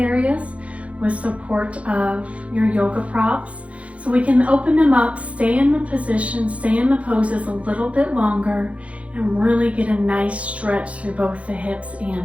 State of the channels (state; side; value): late; left; 0.064 ms